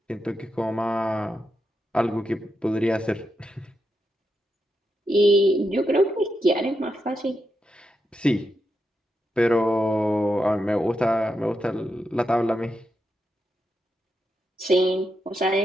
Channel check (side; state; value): both; normal; correlation 0.85